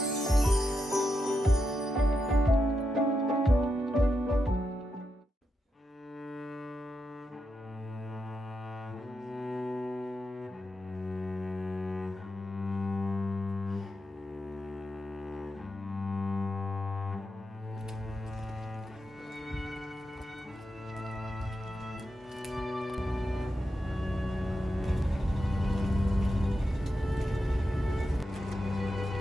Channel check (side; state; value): both; normal; correlation 0.86